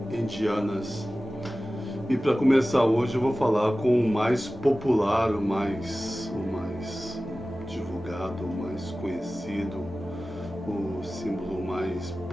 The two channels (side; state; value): both; normal; correlation 0.96